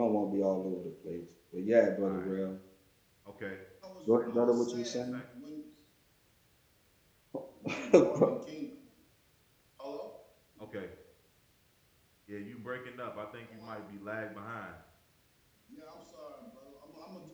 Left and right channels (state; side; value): identical; both; correlation 1.00